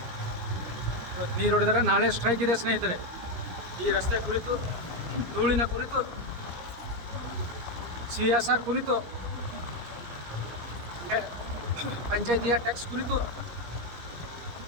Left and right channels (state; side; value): late; left; 17 ms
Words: ಇವತ್ತು ನೀರು ಹೊಡೆದಾರೆ, ನಾಳೆ ಸ್ಟ್ರೈಕ್ ಇದೆ ಸ್ನೇಹಿತರೆ. ಈ ರಸ್ತೆ ಕುರಿತು, ಧೂಳಿನ ಕುರಿತು, CSR ಕುರಿತು, ಪಂಚಾಯತಿಯ ಟ್ಯಾಕ್ಸ್ ಕುರಿತು.